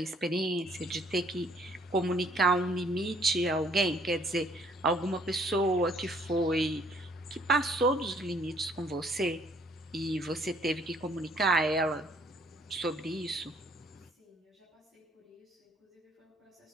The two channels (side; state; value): both; normal; correlation 0.62